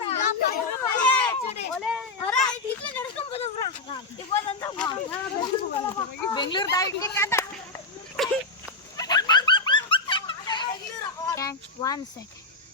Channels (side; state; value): right; quieter; 3.4 dB